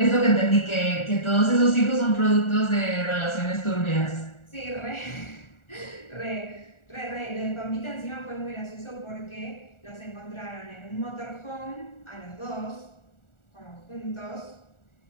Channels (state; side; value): late; right; 1.4 ms